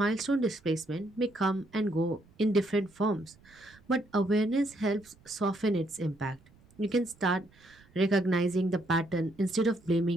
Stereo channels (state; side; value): noise; right; rumble, 28 dB below the sound